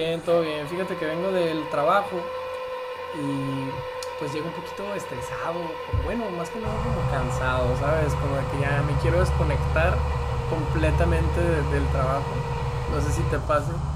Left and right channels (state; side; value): identical; both; correlation 1.00